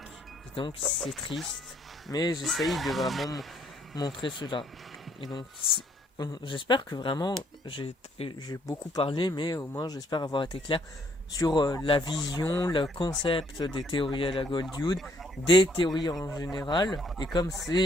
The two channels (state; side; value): normal; both; correlation 0.67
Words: Et donc c'est triste, mais j'essaye de vraiment montrer cela. Et donc j'espère que vraiment j'ai beaucoup parlé, mais au moins j'espère avoir été clair sur la vision, le concept des théories à la Goldwood, des théories en général, et comme